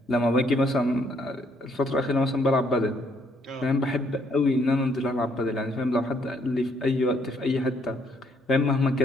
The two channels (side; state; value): both; normal; correlation 0.69